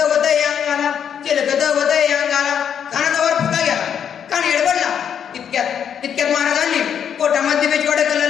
वदय अंगाला. खानाचा वर फुका गेला. खान एडबडला. इतक्यात महाराजांनी पोटामध्ये बिजवाडा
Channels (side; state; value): right; quieter; 8.3 dB